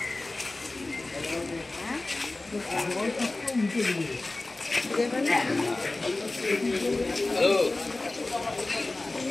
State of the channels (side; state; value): right; quieter; 3.0 dB